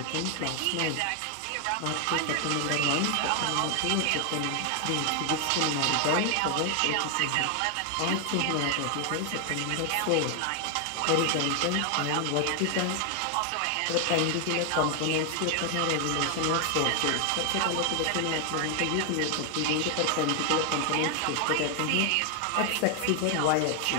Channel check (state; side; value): different; both; correlation 0.00